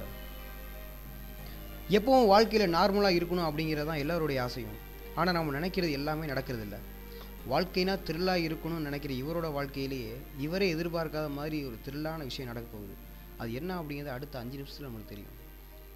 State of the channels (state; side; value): identical; both; correlation 1.00